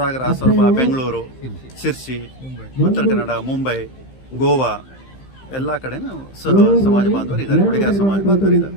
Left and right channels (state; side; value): late; right; 15 ms